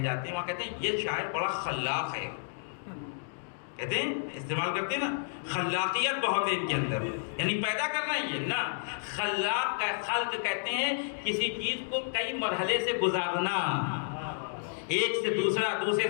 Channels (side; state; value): right; silent; digital silence